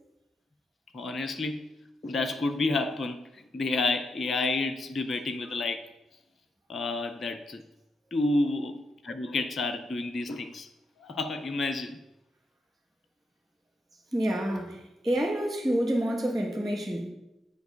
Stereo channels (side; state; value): both; normal; correlation 0.82